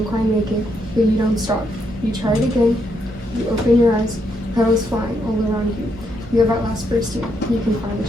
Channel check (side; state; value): both; normal; correlation 0.77